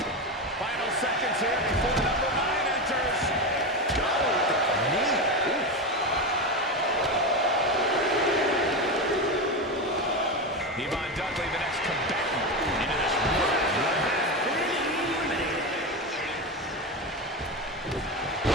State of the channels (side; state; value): both; normal; correlation 0.17